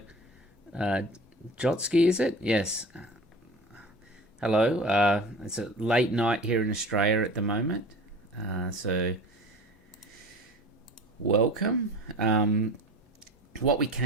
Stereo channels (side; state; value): both; normal; correlation 0.38